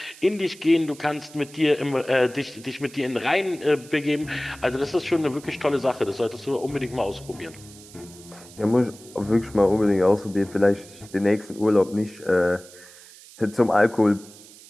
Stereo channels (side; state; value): right; noise; hiss, 20 dB below the sound